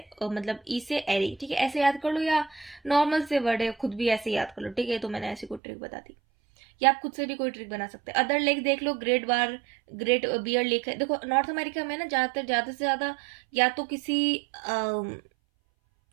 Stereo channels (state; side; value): drops out; left; at 5.6 s